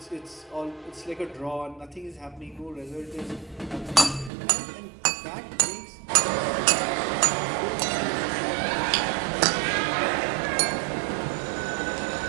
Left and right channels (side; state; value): left; drops out; at 4.3 s